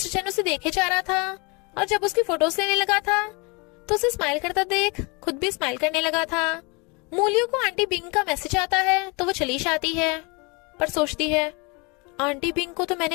चैन उसे देखे जा रहा था और जब उसकी फोटोज लेने लगा था तो उसे स्माइल करता देख खुद भी स्माइल करने लगा था। मूलियो को आंटी बिंग का मैसेज आता है तो वो चली जाती है, पर सोचती है, आंटी बिंग को तो मैंने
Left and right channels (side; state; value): right; quieter; 29.6 dB